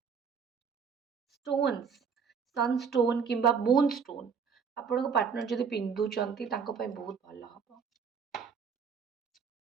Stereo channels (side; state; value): left; quieter; 6.2 dB